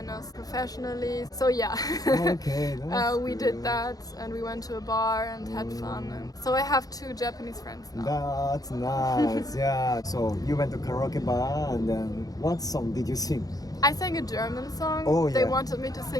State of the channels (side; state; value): right; late; 0.18 ms